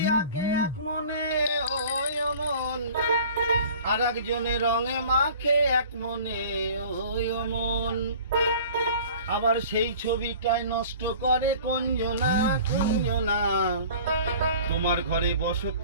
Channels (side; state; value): both; inverted; correlation -0.45